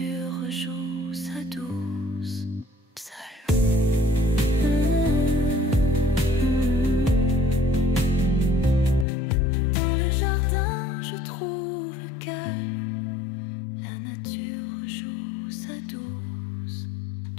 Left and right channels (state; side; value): drops out; right; at 9.1 s